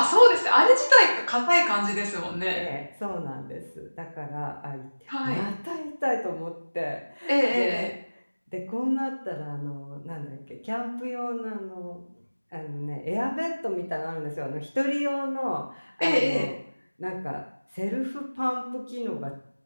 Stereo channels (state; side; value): inverted; both; correlation -1.00